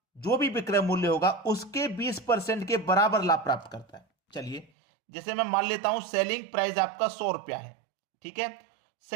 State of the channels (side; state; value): left; drops out; at 4.7 s